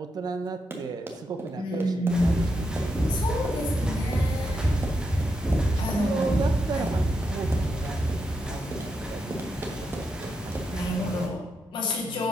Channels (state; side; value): normal; both; correlation 0.83